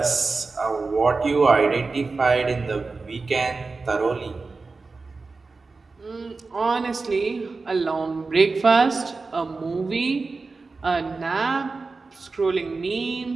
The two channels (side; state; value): left; quieter; 4.0 dB